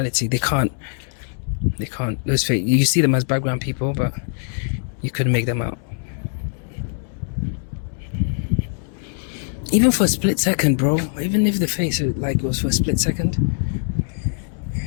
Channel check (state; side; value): silent; right; 64 dB below the other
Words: They can't. Those fake. You see them as background people, but you couldn't make them out. Even for a split second, bro. Even if the face was for a split second,